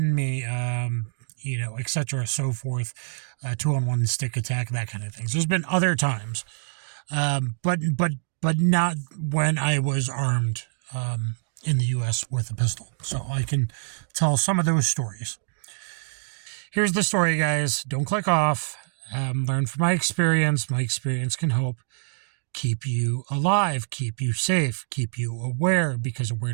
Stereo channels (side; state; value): left; silent; digital silence